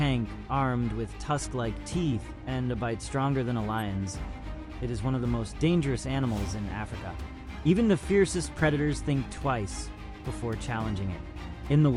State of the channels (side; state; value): both; identical; correlation 1.00